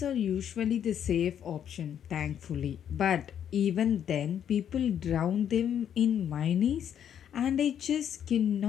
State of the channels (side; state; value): right; quieter; 9.2 dB